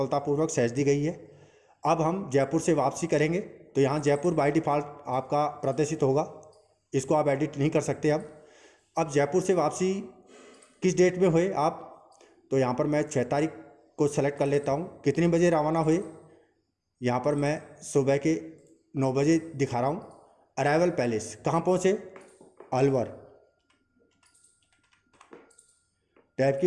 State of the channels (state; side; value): identical; both; correlation 1.00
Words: सहेज दी गई है। अब हम जयपुर से वापसी करेंगे तो यहाँ जयपुर बाय डिफ़ॉल्ट आपका प्रदर्शित होगा, इसको आप एडिट नहीं कर सकते। अब जयपुर से वापसी किस डेट में हुए आप, तो यहाँ पर मैं 6 तारीख को सेलेक्ट कर लेता हूँ। कितने बजे रवाना हुए, यहाँ पर मैं सुबह के 9 बजे दिखा रहा हूँ। अराइवल पैलेस, कहाँ पहुँचे, अलवर। टैब की